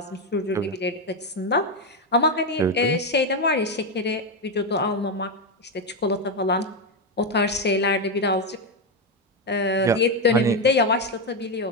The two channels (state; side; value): normal; both; correlation 0.07